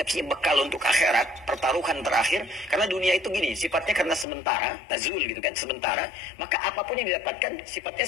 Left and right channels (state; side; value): drops out; right; at 4.2 s